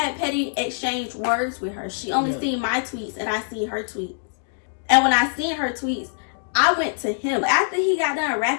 petty exchange words with her. She only seen my tweets and I seen her tweets. And when I seen her tweets, I went to him. After he got done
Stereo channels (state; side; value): silent; right; digital silence